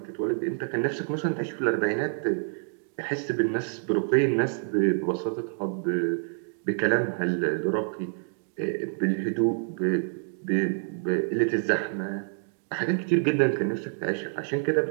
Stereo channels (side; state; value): left; silent; digital silence